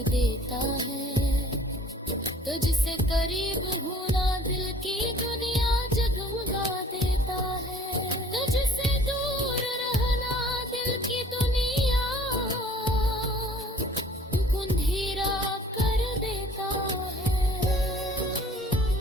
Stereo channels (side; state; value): both; normal; correlation 0.53